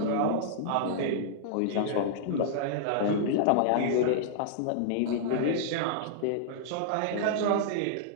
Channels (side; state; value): both; different; correlation -0.02